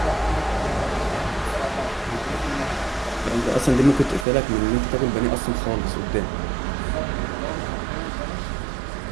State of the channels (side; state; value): left; drops out; at 4.2 s